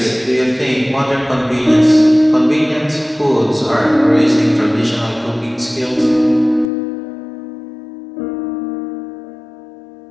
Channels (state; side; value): drops out; right; at 6.7 s